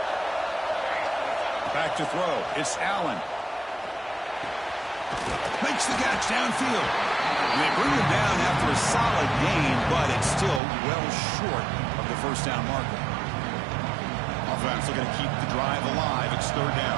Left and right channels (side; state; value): left; drops out; at 10.6 s